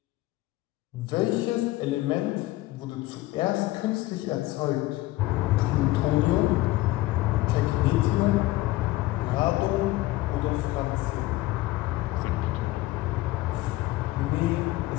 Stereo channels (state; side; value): quieter; right; 18.1 dB